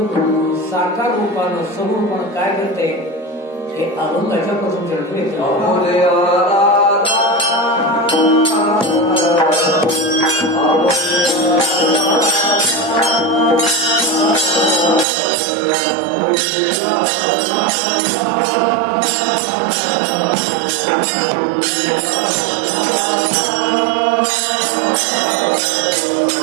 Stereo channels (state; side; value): drops out; left; at 15.1 s